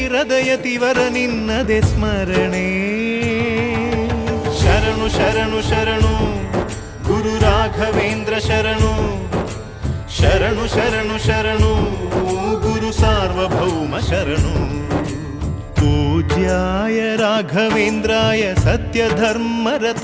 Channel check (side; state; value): both; identical; correlation 1.00